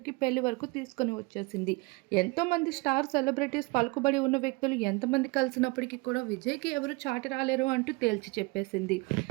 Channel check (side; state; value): left; quieter; 25.8 dB